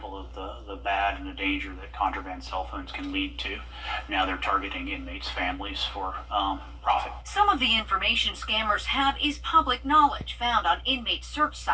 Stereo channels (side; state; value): both; identical; correlation 1.00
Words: of the bad and the danger that contraband cell phones can lead to. Now they're targeting inmates' families for profit. Some of the information scammers have is public knowledge found on inmate search